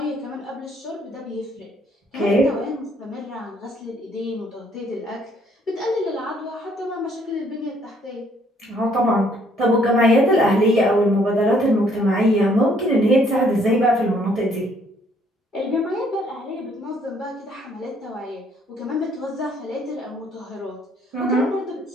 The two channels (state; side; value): normal; both; correlation 0.65